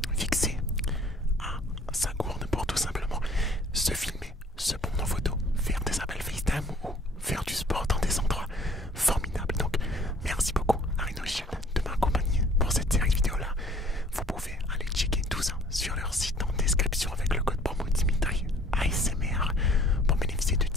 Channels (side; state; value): both; normal; correlation 0.55